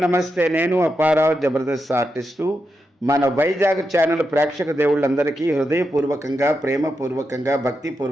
నేను Apparao, Jabardasth artist. మన వైజాగ్ ఛానల్ ప్రేక్షక దేవుళ్ళందరికీ హృదయపూర్వకంగా, ప్రేమపూర్వకంగా,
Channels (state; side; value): normal; both; correlation 0.86